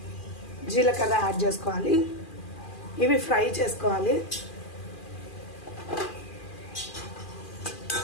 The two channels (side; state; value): right; late; 2.4 ms